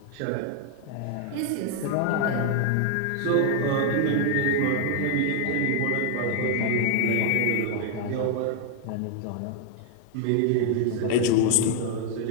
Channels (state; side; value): different; both; correlation 0.00